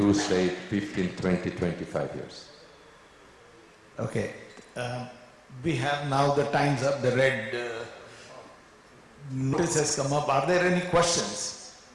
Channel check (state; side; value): identical; both; correlation 1.00